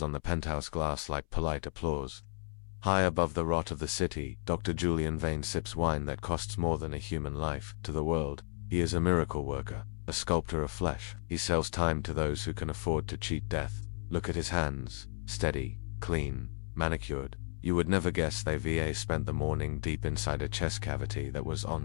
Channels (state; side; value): silent; right; 55 dB below the other